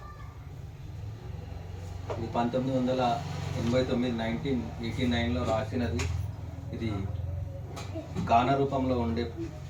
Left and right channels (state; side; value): identical; both; correlation 1.00